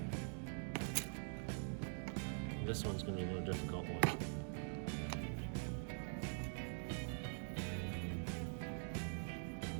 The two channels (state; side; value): silent; left; digital silence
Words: This one's going to be a more difficult one.